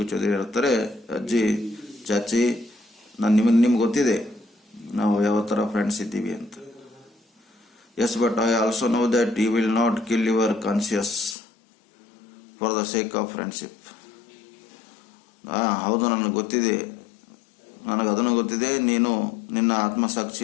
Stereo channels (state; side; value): drops out; right; at 11.4 s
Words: Chaudhary ಹೇಳ್ತಾರೆ, ಅಜ್ಜಿ ಚಾಚಿ ನಿಮ್ಗೆ ಗೊತ್ತಿದೆ ನಾವು ಯಾವ ಥರ ಫ್ರೆಂಡ್ಸ್ ಇದ್ದೀವಿ ಅಂತ. Yes, but I also know that you will not kill your conscience for the sake of friendship. ಹೌದು, ನನಗೆ ಗೊತ್ತಿದೆ, ಅದನ್ನು ಗೊತ್ತಿದೆ, ನೀನು ನಿನ್ನ